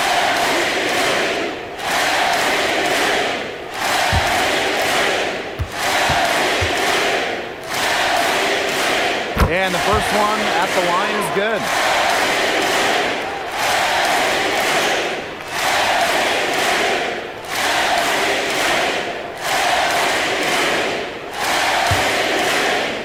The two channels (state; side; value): identical; both; correlation 1.00